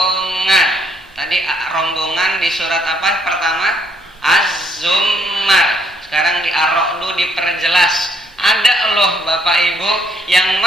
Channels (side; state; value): both; normal; correlation 0.70